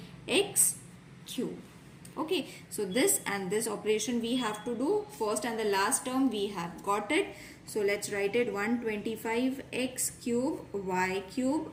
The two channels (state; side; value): identical; both; correlation 1.00